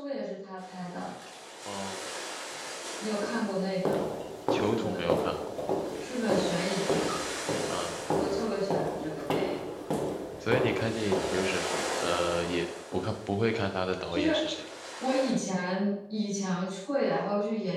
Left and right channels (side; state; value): both; identical; correlation 1.00